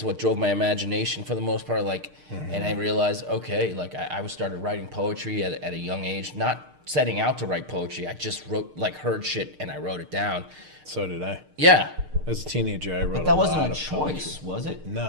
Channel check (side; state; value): left; late; 6.6 ms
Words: what drove my imagination for the most part. Like, and I realized, okay, like I started writing poetry at a young age. Not setting out to write poetry. I just wrote, like, heard shit and I wrote it down. So did I. Yeah. As a teenager, I wrote. But that wasn't lot a of choice, poetry. was it?